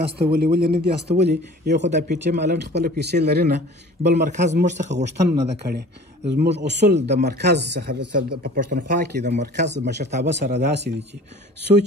استولي ولې نه دي استولي یو خو د پی ټي ایم هالنډ خپله پیسې لري نه بل مرکز موږ څخه غوښتنه نه ده کړې. زموږ اصول د مرکز څخه په پښتونخوا کې د مرکز مشرتابه سره داسې دي چې څو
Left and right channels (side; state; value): both; normal; correlation 0.45